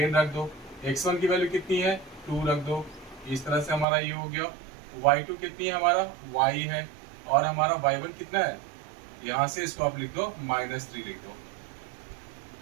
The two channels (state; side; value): drops out; left; at 3.9 s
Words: रख दो। x1 की वैल्यू कितनी है, 2 रख दो। इस तरह से हमारा ये हो गया। y2 कितनी है, हमारा y है, और हमारा y1 कितना है, यहाँ से इसको आप लिख दो -3 लिख दो,